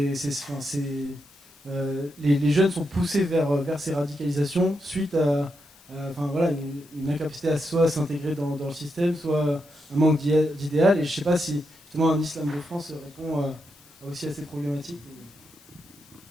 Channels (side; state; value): left; noise; hiss, 26 dB below the sound